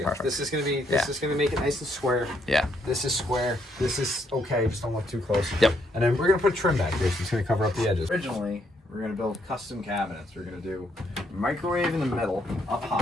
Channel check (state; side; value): normal; both; correlation 0.73